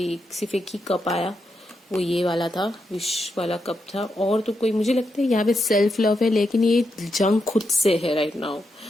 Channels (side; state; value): both; normal; correlation 0.84